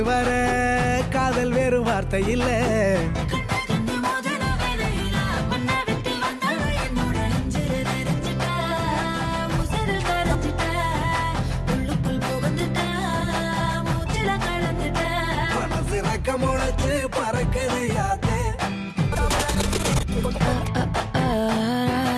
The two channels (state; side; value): identical; both; correlation 1.00